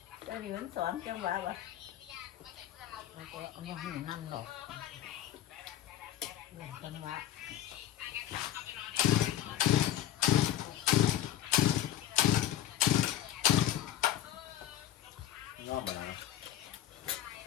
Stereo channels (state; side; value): quieter; right; 11.8 dB